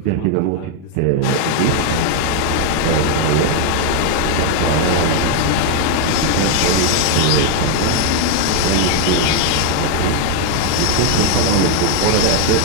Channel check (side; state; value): both; different; correlation 0.01